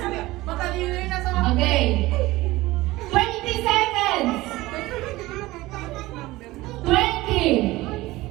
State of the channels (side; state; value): left; quieter; 18.9 dB